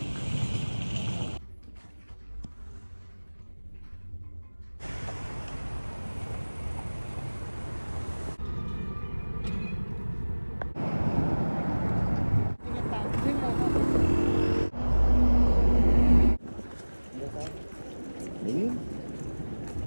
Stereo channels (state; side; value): inverted; both; correlation -1.00